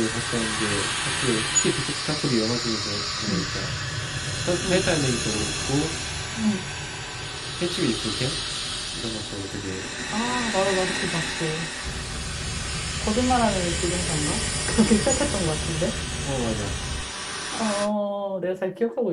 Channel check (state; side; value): identical; both; correlation 1.00